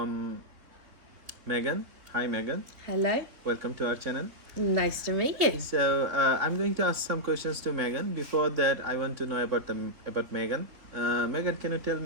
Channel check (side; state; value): left; late; 3.5 ms